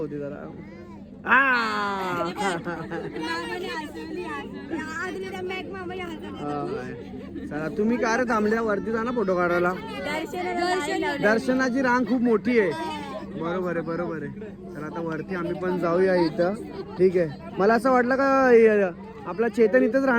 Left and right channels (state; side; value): identical; both; correlation 1.00